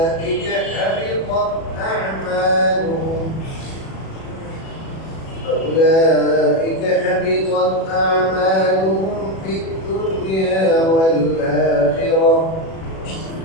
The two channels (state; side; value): late; right; 37 ms